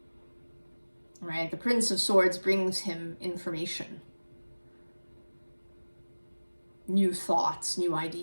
Right? The Prince of Swords brings him information, new thoughts, new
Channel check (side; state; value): both; inverted; correlation -1.00